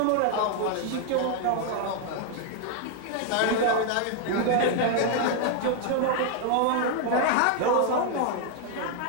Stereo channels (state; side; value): different; both; correlation 0.00